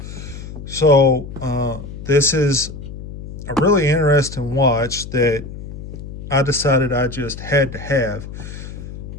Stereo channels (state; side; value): noise; left; hum, 11 dB below the sound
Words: So this is a really interesting watch that I decided I just had to have.